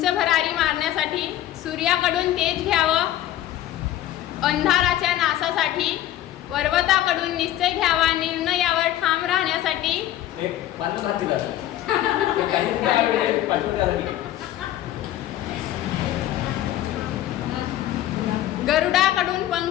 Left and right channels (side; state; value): right; quieter; 13.2 dB